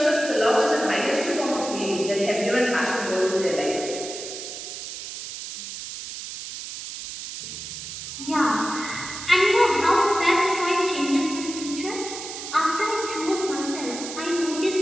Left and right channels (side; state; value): right; noise; hiss, 9 dB below the sound